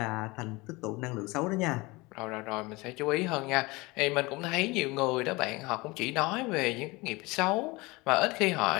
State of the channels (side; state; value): right; quieter; 23.5 dB